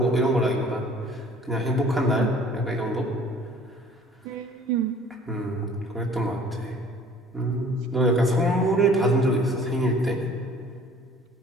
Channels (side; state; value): both; normal; correlation 0.52